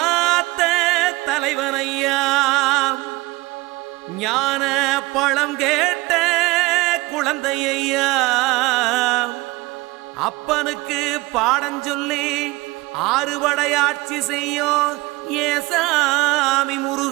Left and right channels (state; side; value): quieter; left; 22.0 dB